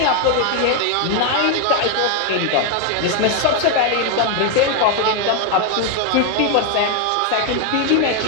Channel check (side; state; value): both; different; correlation 0.01